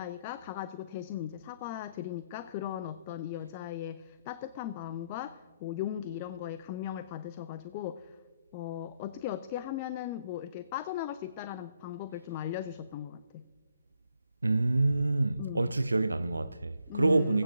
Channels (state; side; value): inverted; both; correlation -0.75